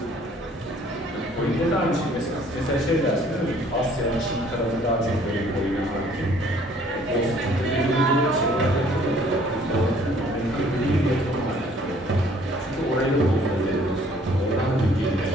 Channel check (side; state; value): both; normal; correlation 0.58